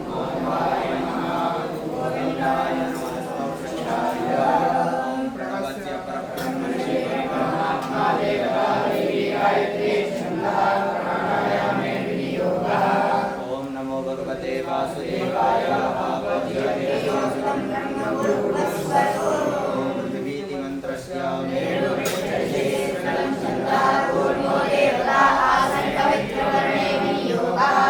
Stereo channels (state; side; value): identical; both; correlation 1.00